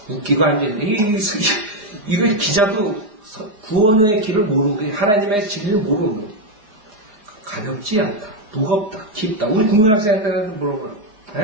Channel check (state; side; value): late; left; 4.9 ms